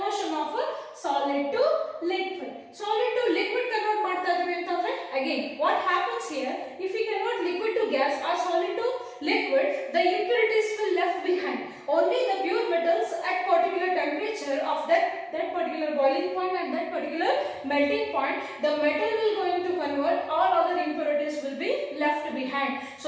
of a solid to liquid. Solid to liquid convert ಮಾಡ್ತಾ ಇದೀವಿ ಅಂತಂದ್ರೆ again what happens here, if we convert liquid to gas or solid to liquid, the impurities will left behind. Only the pure metals at particular temperature of that particular boiling point and that particular melting point, the metal will going to convert, all other impurities will be left behind.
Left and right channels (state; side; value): identical; both; correlation 1.00